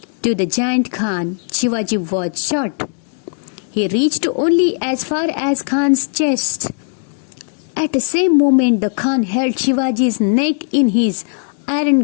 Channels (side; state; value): right; silent; 68 dB below the other